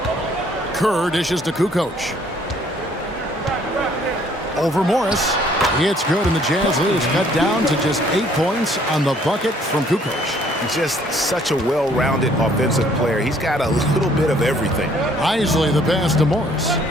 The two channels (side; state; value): both; normal; correlation 0.61